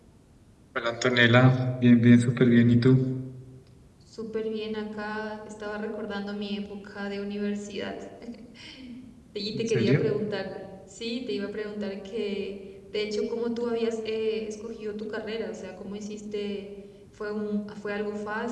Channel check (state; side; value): identical; both; correlation 1.00